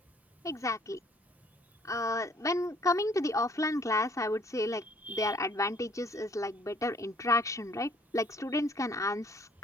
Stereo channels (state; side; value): normal; both; correlation 0.60